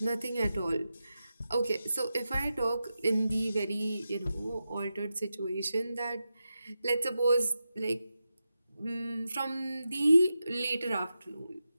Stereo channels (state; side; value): inverted; both; correlation -0.90